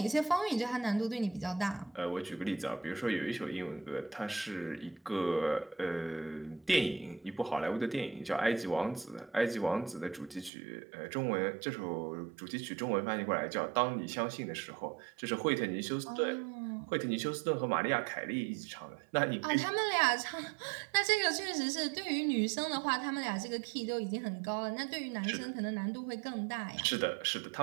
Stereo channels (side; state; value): left; drops out; at 10.5 s